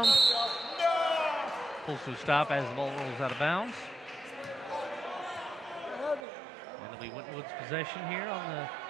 Pulls to a stop as the ball rolls out of bounds. And it'll be Winton Woods' possession here on the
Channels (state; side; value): drops out; left; at 6.2 s